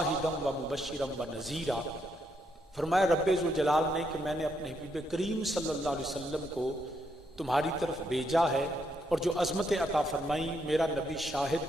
و مبشرا و نذیرا، فرمایا رب ذوالجلال نے کہ میں نے اپنے حبیب کریم صلی اللہ علیہ وسلم کو تمہاری طرف بھیجا ہے، اور جو عظمت عطا فرمائی، میرا نبی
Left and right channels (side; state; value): both; normal; correlation 0.77